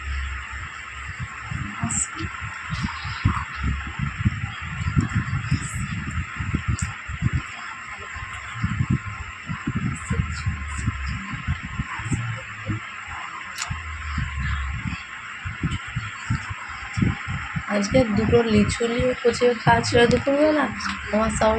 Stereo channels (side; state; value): both; identical; correlation 1.00